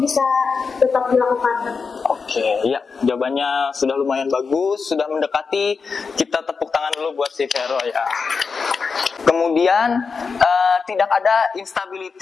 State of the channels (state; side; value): quieter; right; 5.1 dB